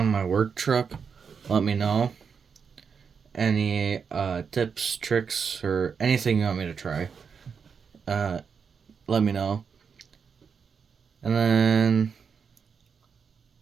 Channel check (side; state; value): left; quieter; 6.2 dB